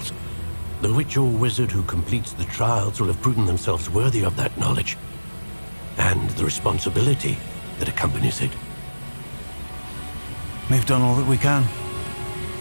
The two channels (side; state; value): both; inverted; correlation -1.00